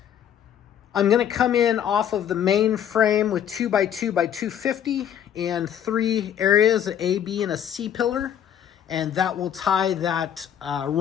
going to come in off of the main frame with 2x2 by 250 and 3 areas, an A, B, and a C pillar. And that will tie that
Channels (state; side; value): quieter; right; 9.6 dB